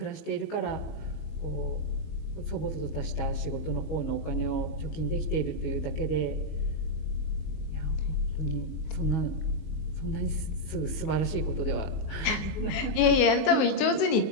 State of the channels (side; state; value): right; late; 19 ms